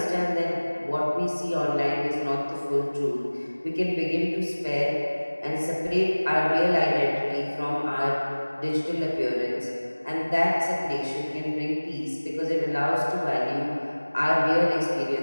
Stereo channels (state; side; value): inverted; both; correlation -1.00